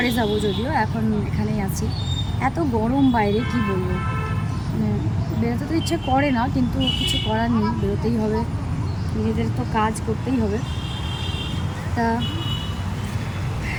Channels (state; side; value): identical; both; correlation 1.00